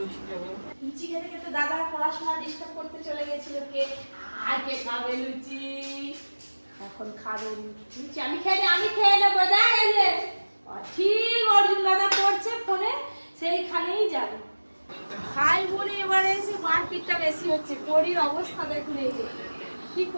লুচি খেতে খেতে দাদা পড়াশোনা ডিস্টার্ব করতে চলে গেছিল। কে আগে খাবে লুচি? এখন খাবে লুচি। আমি খেয়ে নেবো। দেখ এই যে ঠিক অর্জুন দাদা পড়ছে ফোনে, সেইখানেই যাবে। খাই বলে এবারে এসে মারপিটটা বেশি হচ্ছে। পরির অবস্থা দেখুন, এই যে কি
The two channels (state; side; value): inverted; both; correlation -1.00